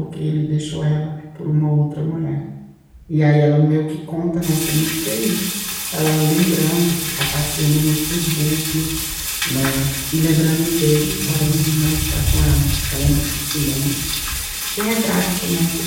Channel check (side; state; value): both; identical; correlation 1.00